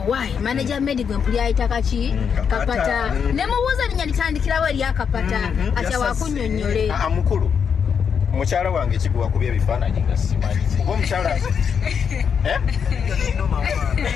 waayi manager Medi gwe mpuli ayita kaki kapata ne mubuuza linnya litandikirawo eri akapata atya wakunyonnyole mukulu mukyala wange kiguwa kubya ebifaananyi nga simanyi oba omukyala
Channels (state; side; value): quieter; right; 6.9 dB